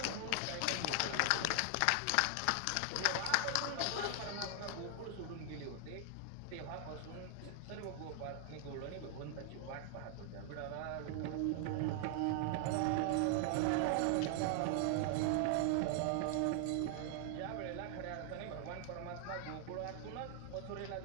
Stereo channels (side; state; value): both; different; correlation 0.00